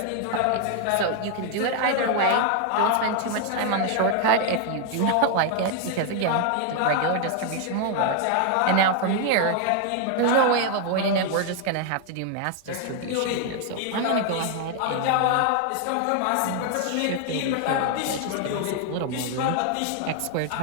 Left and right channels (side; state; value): both; different; correlation 0.00